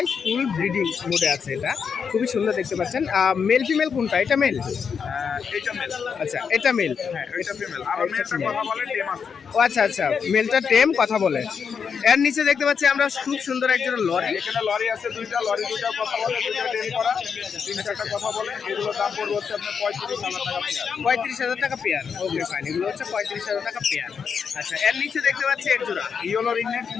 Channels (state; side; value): quieter; right; 6.4 dB